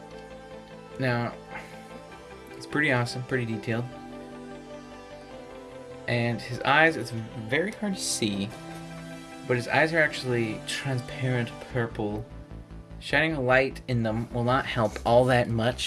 Now, it's pretty awesome, pretty detailed. And his eyes, it's very hard to see, but his eyes are actually transparent purple. Shining a light in them will not help all that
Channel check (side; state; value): both; identical; correlation 1.00